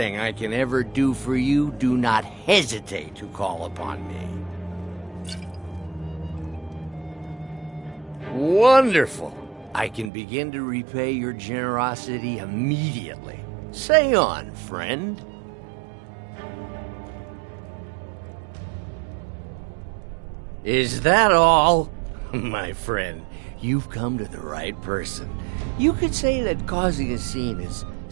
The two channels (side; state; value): left; drops out; at 10.1 s